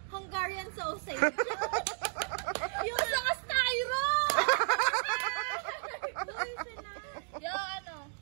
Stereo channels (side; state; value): left; silent; digital silence